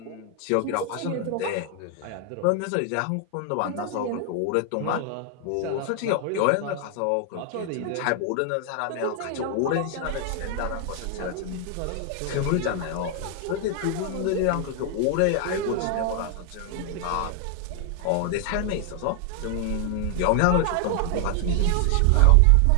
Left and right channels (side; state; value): both; different; correlation 0.00